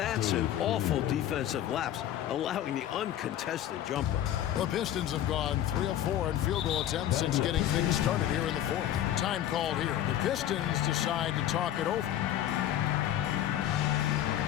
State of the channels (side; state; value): right; quieter; 11.7 dB